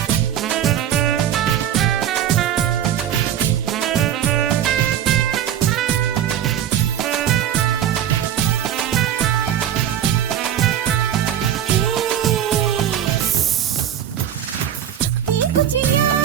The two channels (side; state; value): left; quieter; 10.2 dB